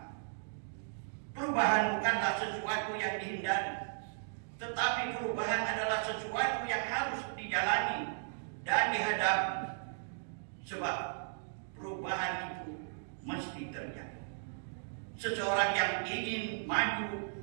Perubahan bukanlah sesuatu yang dihindari, tetapi perubahan adalah sesuatu yang harus dijalani dan dihadapi, sebab perubahan itu mesti terjadi. Seseorang yang ingin maju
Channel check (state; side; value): silent; left; digital silence